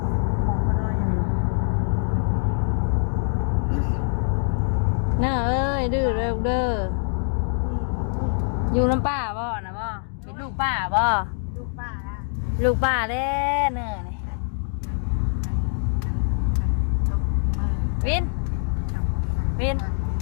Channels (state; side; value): silent; right; 55 dB below the other